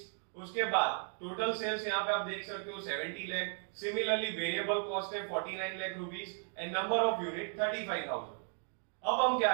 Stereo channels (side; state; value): left; silent; 54 dB below the other